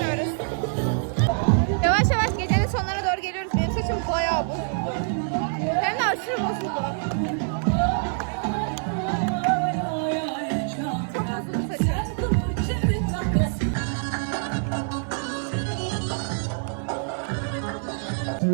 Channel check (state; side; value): silent; left; 61 dB below the other